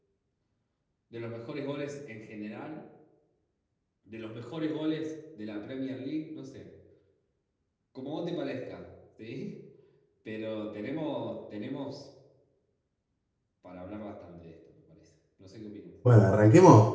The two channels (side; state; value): both; identical; correlation 1.00